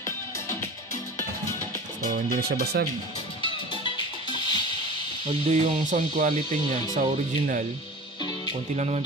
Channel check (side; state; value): both; normal; correlation 0.36